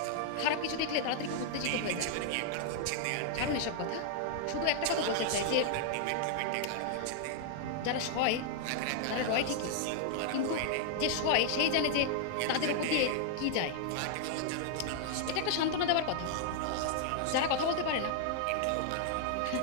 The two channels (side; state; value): both; different; correlation -0.01